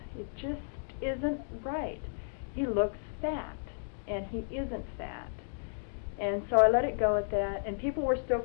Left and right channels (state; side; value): silent; right; digital silence